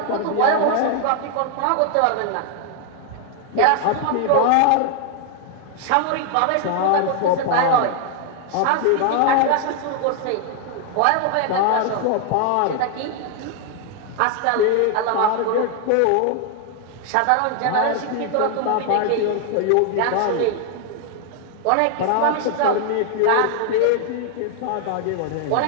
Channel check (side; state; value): both; different; correlation 0.00